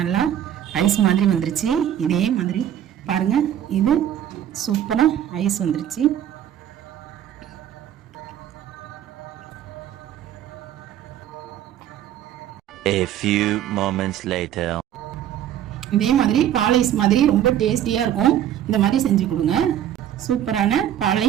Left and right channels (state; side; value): quieter; left; 10.8 dB